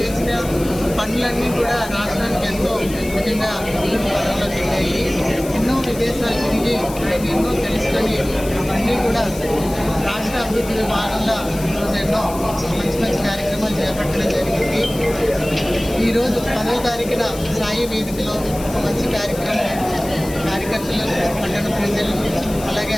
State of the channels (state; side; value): noise; left; hiss, 14 dB below the sound